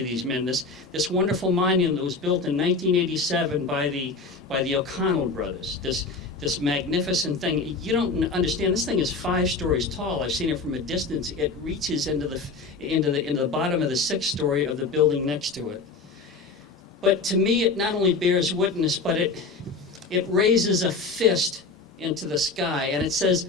these men. This wonderful monument that was built in 1987 by the O'Connell brothers. This magnificent thing. You don't understand. This thing is 5 stories tall. I've seen it from a distance. It reaches into the bottom of the 6th story of the building next to it. But to me, it not only bears witness, but it raises a fist into the sky, and it says,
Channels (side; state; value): right; quieter; 4.0 dB